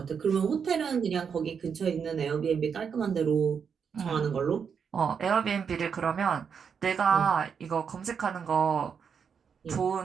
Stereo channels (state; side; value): quieter; left; 6.7 dB